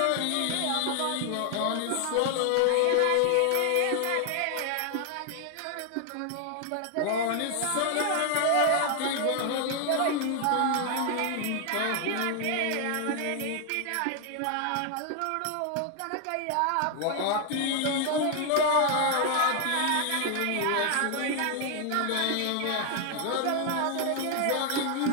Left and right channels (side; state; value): both; different; correlation 0.00